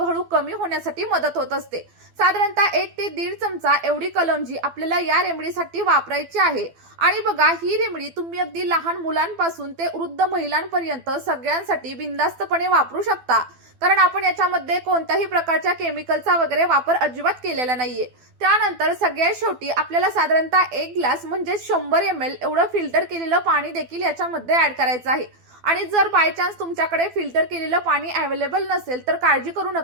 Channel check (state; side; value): late; left; 12 ms